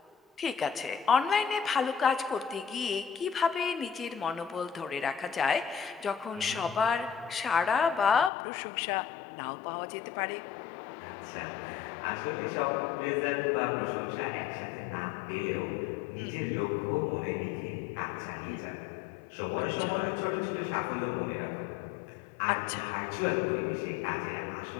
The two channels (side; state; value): right; drops out; at 8.3 s